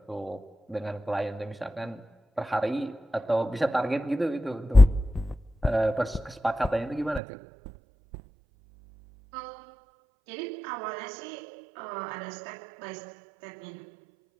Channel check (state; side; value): drops out; left; at 7.2 s